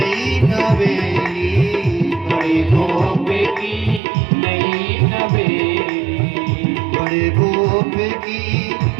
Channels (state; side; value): drops out; left; at 4.0 s